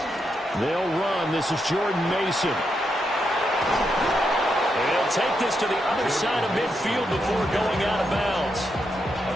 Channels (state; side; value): normal; both; correlation 0.82